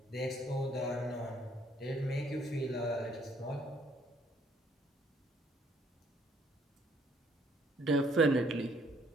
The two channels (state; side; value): normal; both; correlation 0.65